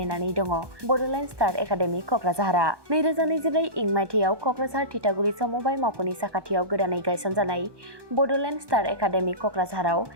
दङ बड'लेण्ड स्टार एकाडेमि क'क्राझारआ। 2024 इं मायथाइयाव क'क्राझार थिथागुरि समबाय मावख'नि साखाथियाव गोदानै गायसनजानाय बड'लेण्ड स्टार एकाडेमि क'क्राझाराव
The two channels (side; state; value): left; late; 1.2 ms